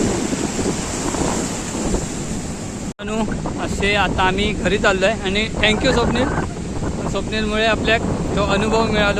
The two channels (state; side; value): identical; both; correlation 1.00